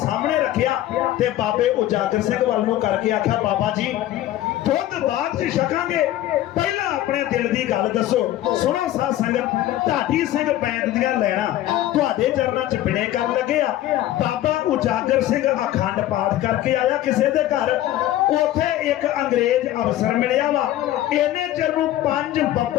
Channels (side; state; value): right; quieter; 13.8 dB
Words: रखिया ते बाबे उजागर सिंह वाल नूं करके आख्या बाबा जी दुध बाद च छकांगे, पहला अपने दिल की गल दसो। सुनो साध संगत, ढाडी सिंह पैंट दियां लैणा तुहाडे चरनां च बिणे कर लगे आ। बाबा उजागर सिंह अखंड पाठ करके आया किसी दे घर, उथे एक अंग्रेज अफसर मिलिया वा। इन्ने चिर नूं 5